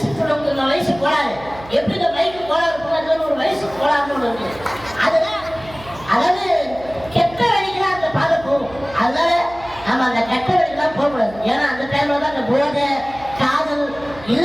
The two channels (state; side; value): noise; right; hum, 19 dB below the sound